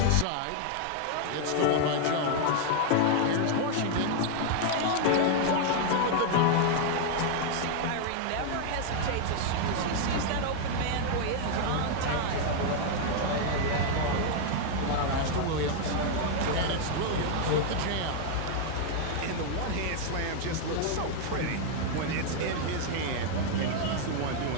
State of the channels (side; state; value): both; different; correlation 0.00